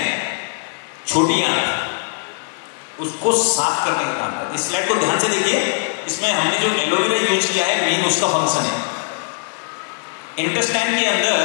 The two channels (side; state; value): right; silent; 60 dB below the other